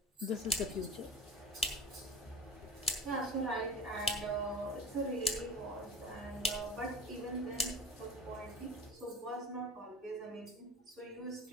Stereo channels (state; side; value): normal; both; correlation 0.35